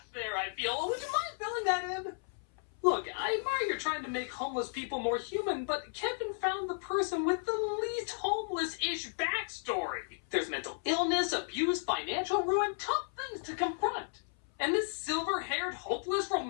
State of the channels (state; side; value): silent; right; 55 dB below the other